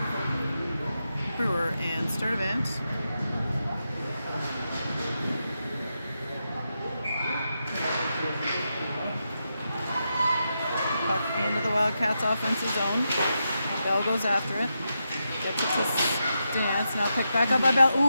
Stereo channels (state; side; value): inverted; both; correlation -0.86